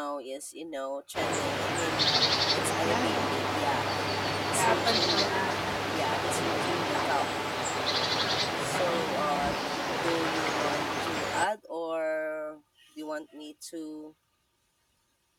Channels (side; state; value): both; identical; correlation 1.00